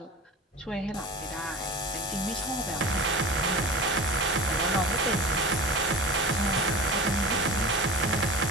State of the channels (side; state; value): both; normal; correlation 0.34